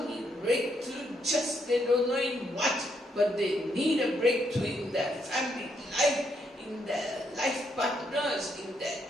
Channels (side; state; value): both; normal; correlation 0.76